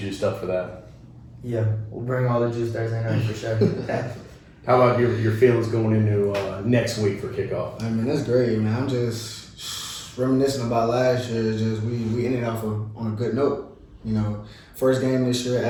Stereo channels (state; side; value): identical; both; correlation 1.00